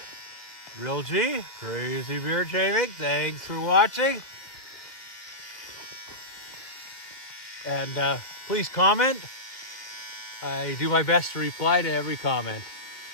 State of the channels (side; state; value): right; late; 1.8 ms